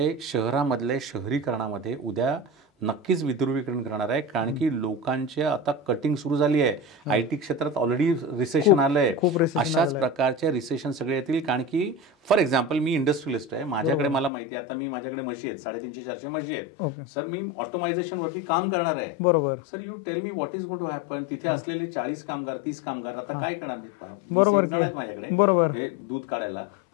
शहरामधले शहरीकरणामध्ये उद्या नक्कीच विध्रुवीकरण करणार आहे, कारण की लोकांची आता कटिंग सुरू झाली आहे. IT क्षेत्रात ऑलरेडी रिसेशन आलंय. अशाच प्रकारचे रिसेशन सगळे येतील. कारण की फॉर एक्झाम्पल मी इंडस्ट्रियलिस्ट आहे, माझ्याकडे मला माहिती आहे आता माझ्याकडे म्हशी आहेत, 350-400 म्हशी आहेत सर. मी ऑटोमायझेशन वरती काम करणार आहे. बरोबर sir. You tell me what is going to happen. तिथे असलेले 40 कामगार 30 कामगार आता काय करणार? मी 20 जण आहेत माझ्याकडे हे दूध काढायला.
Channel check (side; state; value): right; drops out; at 14.3 s